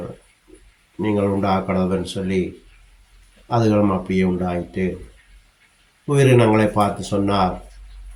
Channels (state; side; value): identical; both; correlation 1.00